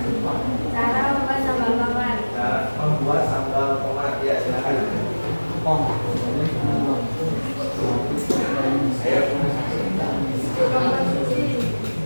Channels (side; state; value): both; inverted; correlation -1.00